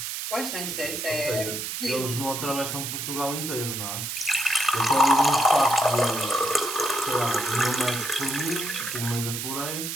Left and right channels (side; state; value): right; noise; hiss, 4 dB below the sound